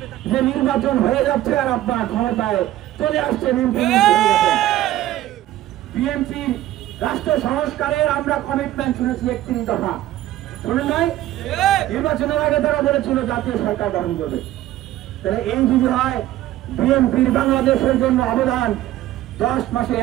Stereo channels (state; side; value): quieter; left; 14.3 dB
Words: যে নির্বাচন হয়ে যাচ্ছে আর আপনারা ক্ষমতায় চলে আসছেন। বিএনপির রাষ্ট্র সংস্কারের আমরা কমিটমেন্ট শুনেছি 31 দফা, শুনেন নাই? নির্বাচনের আগে তারা বলেছিল জাতীয় সরকার গঠন করবে। তাহলে এই যদি হয় বিএনপির বাংলাদেশের জন্য অবদান 10 মাসে